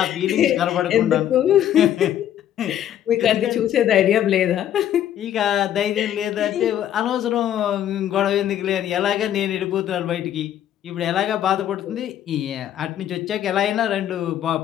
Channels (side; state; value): right; quieter; 11.0 dB